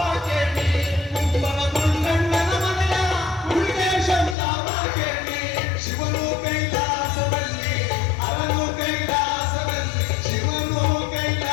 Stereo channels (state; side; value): drops out; right; at 4.4 s